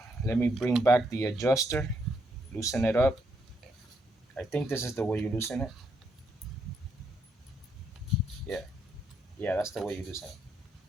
Let me bring back the adjuster, loosen it up. I think this is the way you loosen it. Yeah, yeah, that's the way you loosen it.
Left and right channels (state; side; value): normal; both; correlation 0.76